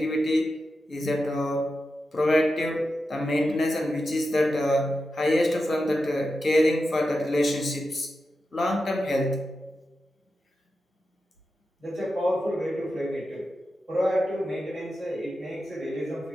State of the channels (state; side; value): normal; both; correlation 0.90